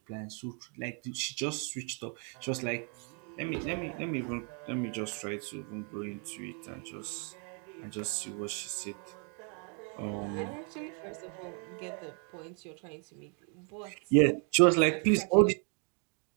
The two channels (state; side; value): quieter; left; 38.6 dB